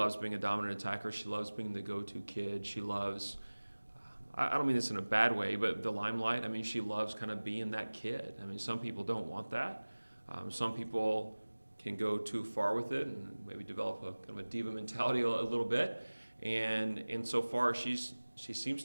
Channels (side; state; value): both; inverted; correlation -1.00